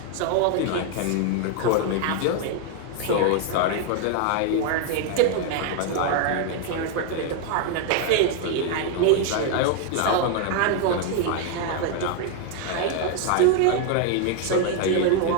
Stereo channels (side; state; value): both; different; correlation 0.01